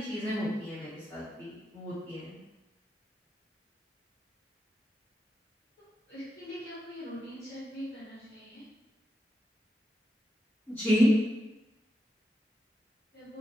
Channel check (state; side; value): normal; both; correlation 0.86